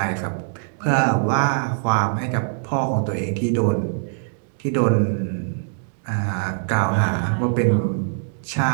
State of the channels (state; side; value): silent; left; digital silence